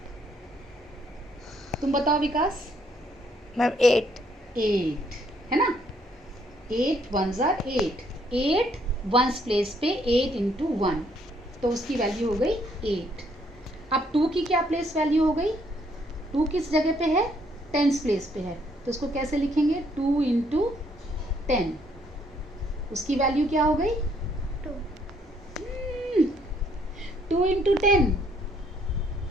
तुम बताओ विकास। मैम 8 है ना। 8 वंस आर 8, 8 वंस प्लेस पे 8 इंटू 1, तो उसकी वैल्यू हो गई 8। अब 2 की क्या प्लेस वैल्यू हो गई? 2 किस जगह पे है? टेंस प्लेस पे है, तो उसको कैसे लिखेंगे? 2 इंटू 10, उसकी वैल्यू क्या हो गई? 2 इंटू 10,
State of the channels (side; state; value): both; normal; correlation 0.68